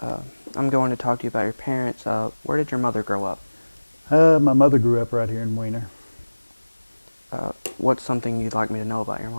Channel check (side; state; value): both; inverted; correlation -1.00